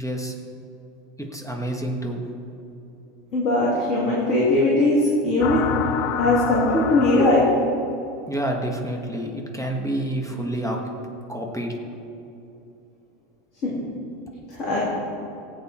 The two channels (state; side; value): normal; both; correlation 0.32